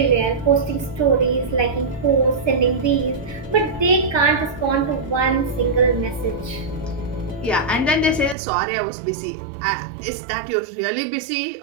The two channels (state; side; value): drops out; left; at 8.3 s